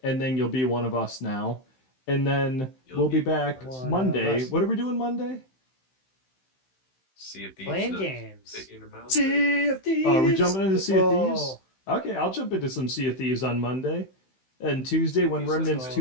and then you'll be one of us now. And then You'll we'll be be one of back us. Monday. What are we doing Monday? See if these playing nuts games. fit in your mouth. Sea of Thieves. Oh, are we jumping into Sea of Thieves? Oh. Okay, I'll jump into some Sea of Thieves on Monday. And Tuesday, when Thieves, Remnants let's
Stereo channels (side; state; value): right; late; 15 ms